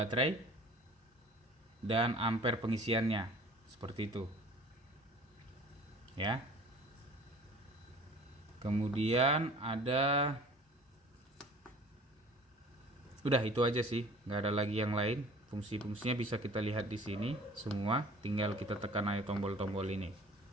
dan ampere pengisiannya, seperti itu ya. Kemudian ada, udah itu aja sih, nggak ada lagi yang lain. Fungsi-fungsinya bisa kita lihat di sini semua, tinggal kita tekan aja tombol-tombol ini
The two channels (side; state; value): both; normal; correlation 0.47